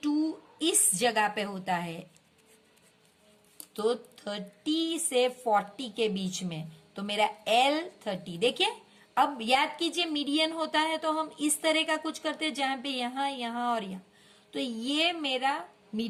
इस जगह पे होता है, तो 30 से 40 के बीच में, तो मेरा L 30। देखिए अब याद कीजिए मीडियन होता है तो हम इस तरह का कुछ करते हैं जहां पे यहां यहां और यहां। तो ये मेरा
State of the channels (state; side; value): identical; both; correlation 1.00